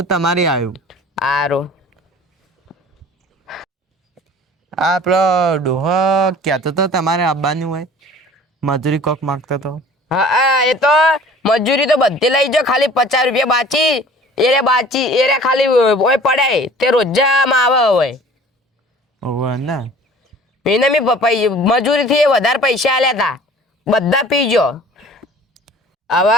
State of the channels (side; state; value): both; normal; correlation 0.47